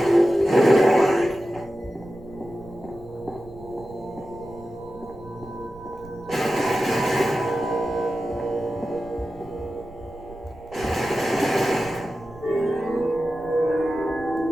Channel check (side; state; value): right; noise; rumble, 20 dB below the sound